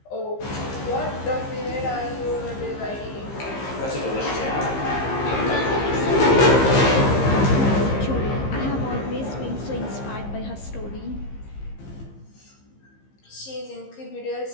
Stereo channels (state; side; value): late; right; 15 ms